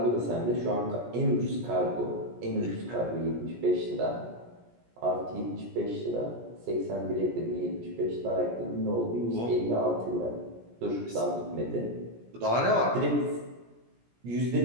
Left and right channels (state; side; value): late; left; 17 ms